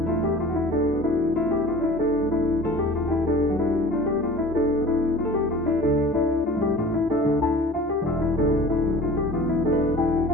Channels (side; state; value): both; normal; correlation 0.42